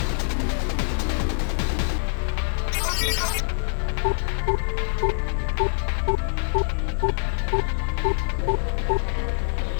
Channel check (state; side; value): silent; right; digital silence